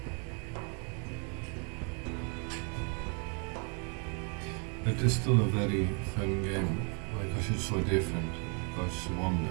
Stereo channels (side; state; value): left; quieter; 37.4 dB